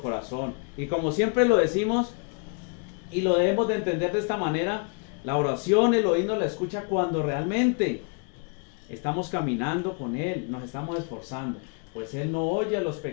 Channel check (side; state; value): right; quieter; 37.9 dB